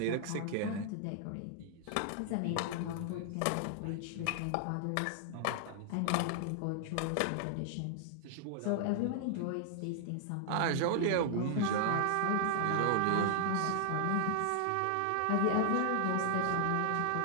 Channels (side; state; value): both; different; correlation -0.01